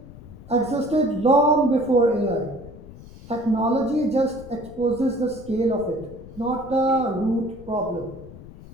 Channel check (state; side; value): noise; left; rumble, 17 dB below the sound